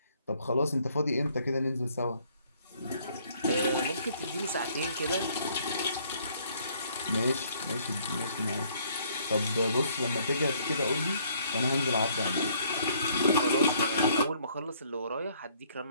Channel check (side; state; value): both; inverted; correlation -0.64